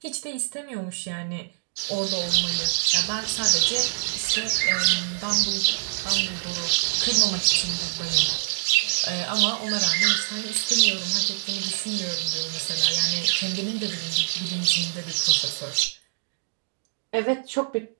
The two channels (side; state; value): left; silent; digital silence